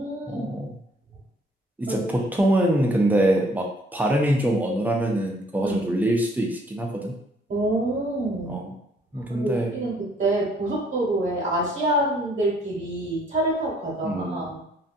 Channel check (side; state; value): both; normal; correlation 0.63